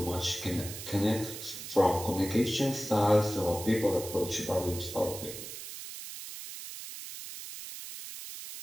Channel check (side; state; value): right; noise; hiss, 10 dB below the sound